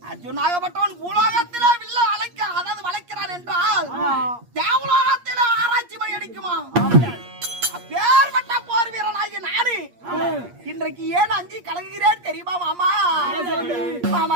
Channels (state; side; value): late; left; 8.5 ms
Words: அர்ஜுனாகப்பட்டவன் பூலோகத்திலே வில்ல அழைக்க அதாவது வளைக்கிறான் என்றால் தேவலோகத்திலே ஆராய்ச்சி மணி அடிக்குமா அப்பேற்பட்ட போர் வீரனாகி நானு இன்றைக்கு ஏன் அஞ்சி கலங்குகிறேன் தெரியுமா மாமா